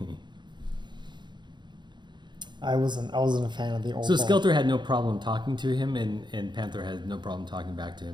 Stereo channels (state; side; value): late; left; 0.22 ms